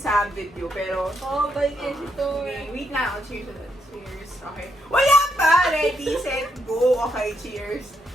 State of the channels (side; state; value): both; normal; correlation 0.79